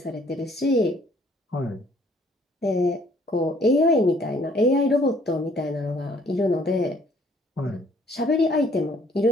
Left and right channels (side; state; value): both; normal; correlation 0.61